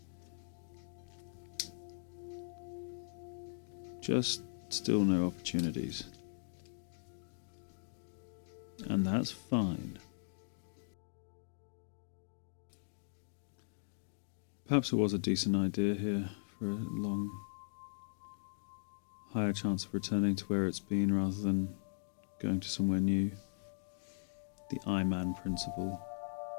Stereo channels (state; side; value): silent; right; digital silence